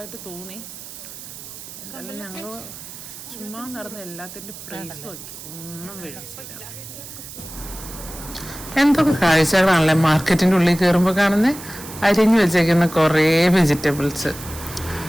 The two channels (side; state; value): right; noise; hiss, 13 dB below the sound